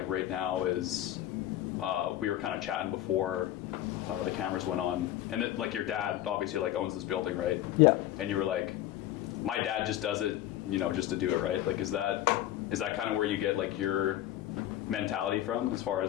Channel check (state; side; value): quieter; right; 13.3 dB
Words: right now is we were kind of chatting before the cameras went on, and it, like your dad obviously like owns this building, right? Yeah. And you were like, my dad just does it, you know, just to do it, right? Like, is that kind of where you get like your mentality from, as far